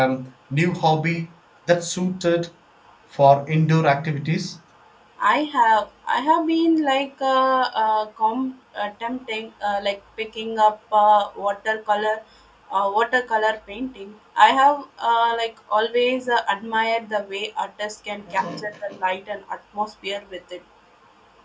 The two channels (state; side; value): identical; both; correlation 1.00